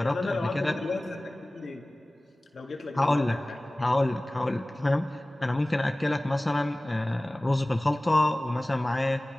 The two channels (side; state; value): both; normal; correlation 0.98